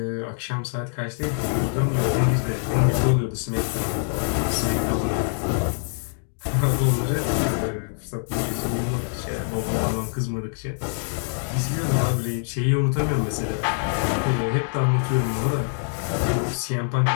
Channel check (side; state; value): right; silent; digital silence